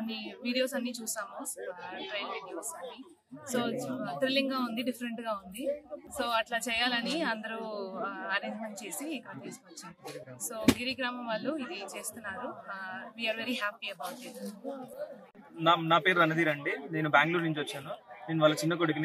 వీడియోస్ అన్ని చూసాము, ట్రైల్ వీడియోస్ అన్ని. సో థ్రిల్లింగ్ గా ఉంది, డిఫరెంట్ గా ఉంది. సో అట్లా చేయాలని అందరూ అరేంజ్మెంట్ చేసి ఇక్కడ తీసుకొచ్చాం. సో గిరిగ్రామం వాళ్ళు ఇది చేస్తున్నారు. We are very happy about it. నా పేరు రణధీర్ అండి. నేను బెంగళూరు నుంచి వచ్చాను. నేను వాళ్ళ చిన్న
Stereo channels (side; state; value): both; identical; correlation 1.00